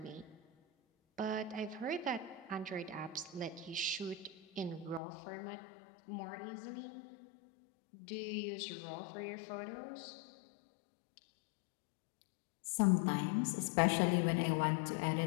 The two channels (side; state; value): right; drops out; at 5.0 s